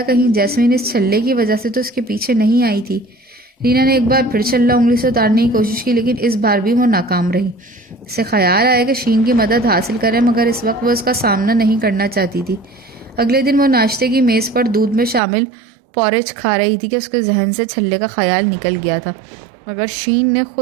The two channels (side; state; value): left; drops out; at 15.2 s